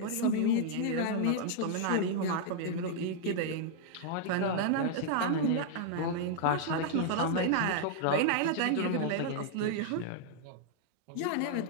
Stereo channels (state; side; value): different; both; correlation -0.01